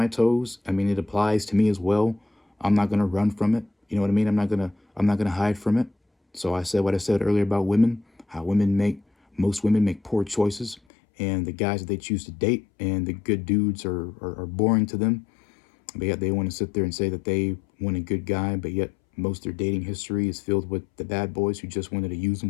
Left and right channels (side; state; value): right; drops out; at 10.8 s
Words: toes, I mean, it applies to me as well. I'm not going to run from it. You know what I mean? I'm not going to hide from it. So I said what I said earlier about women, how most women make poor choices, and the guys that they choose to date and the good dudes are boring to them. But yet they want to sit there and say that they want a good guy, but yet most of their dating history is filled with the bad boys who just wanted to use